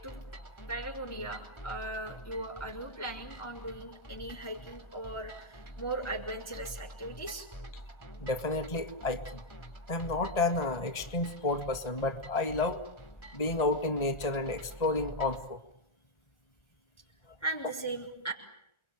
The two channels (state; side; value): late; right; 1.4 ms